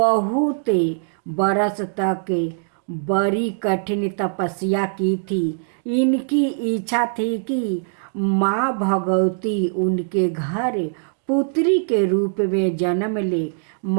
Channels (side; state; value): left; silent; digital silence